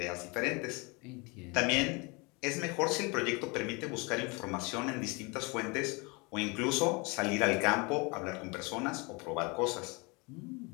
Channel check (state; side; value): quieter; right; 28.4 dB